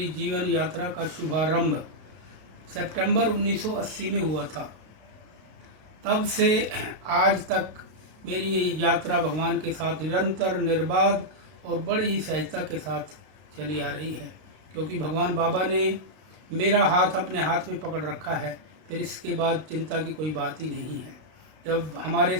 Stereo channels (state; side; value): late; left; 32 ms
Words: जीवन यात्रा का शुभारंभ सितंबर 1980 में हुआ था। तब से आज तक मेरी ये यात्रा भगवान के साथ निरंतर निर्बाध और बड़ी ही सहजता के साथ चली आ रही है, क्योंकि भगवान बाबा ने मेरा हाथ अपने हाथ में पकड़ रखा है। फिर इसके बाद चिंता की कोई बात ही नहीं है। जब हमारे